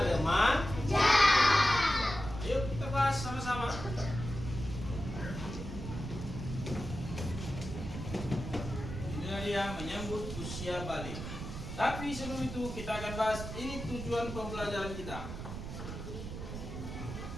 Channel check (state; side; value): noise; right; rumble, 7 dB below the sound